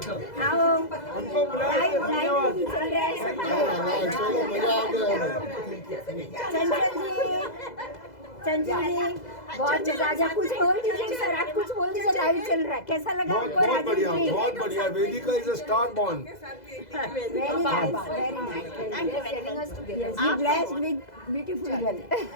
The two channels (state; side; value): late; right; 2.0 ms